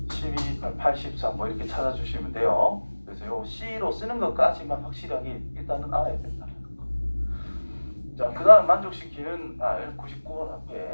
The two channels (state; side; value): inverted; both; correlation -1.00